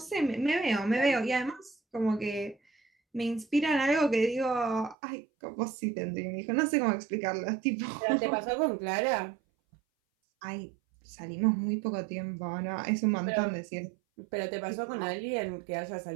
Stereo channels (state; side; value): drops out; left; at 5.0 s